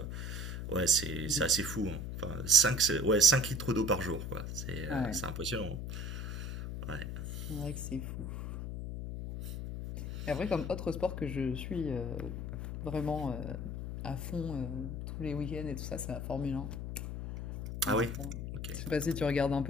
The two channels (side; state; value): left; noise; hum, 5 dB below the sound